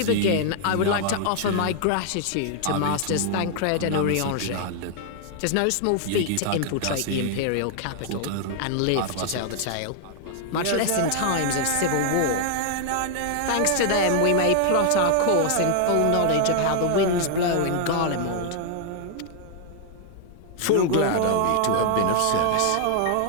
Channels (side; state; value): both; different; correlation -0.01